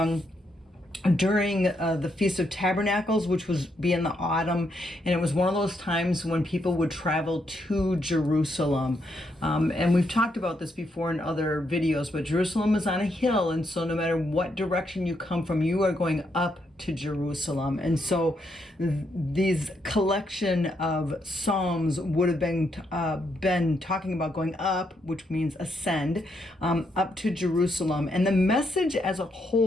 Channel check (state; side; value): normal; both; correlation 0.78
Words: during the Feast of Tabernacles, which was be in the autumn, and it was one of those times when people would travel to Jerusalem. And we've talked about this before in other videos, but Jerusalem is on a hill, and so no matter what direction you come from, you are going up to Jerusalem. And so these collection of psalms would have been talking about going up, which means ascend, up to Jerusalem. And the message as a